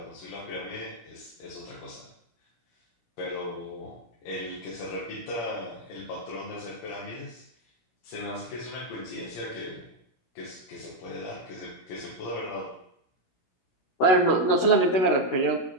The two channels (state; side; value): late; right; 16 ms